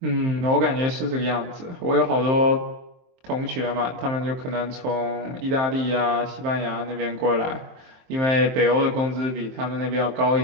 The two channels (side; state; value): left; late; 23 ms